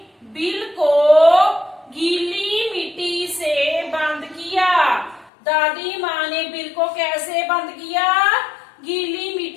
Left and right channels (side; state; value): right; drops out; at 5.3 s